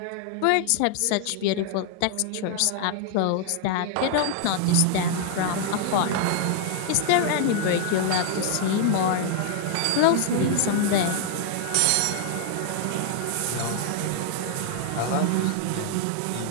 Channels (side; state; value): both; different; correlation 0.00